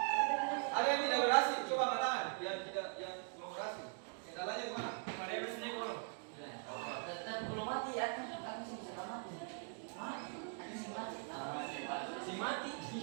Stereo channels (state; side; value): silent; left; 50 dB below the other